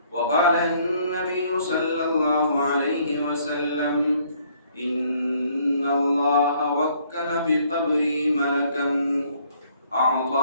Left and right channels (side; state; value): both; inverted; correlation -0.64